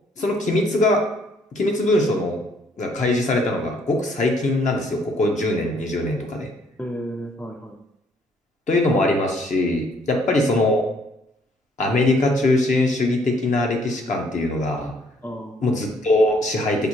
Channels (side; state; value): both; normal; correlation 0.65